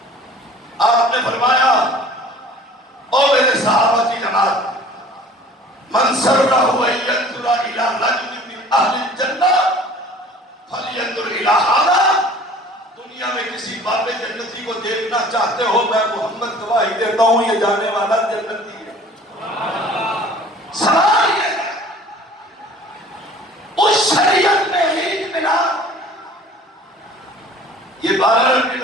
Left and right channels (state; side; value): normal; both; correlation 0.48